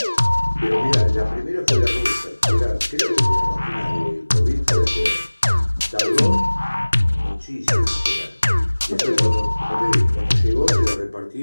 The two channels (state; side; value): inverted; both; correlation -1.00